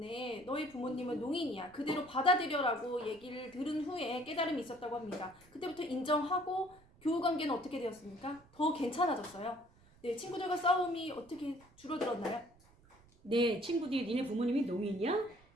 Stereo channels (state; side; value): noise; right; rumble, 27 dB below the sound